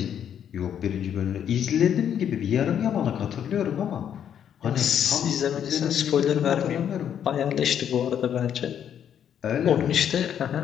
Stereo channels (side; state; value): right; quieter; 9.1 dB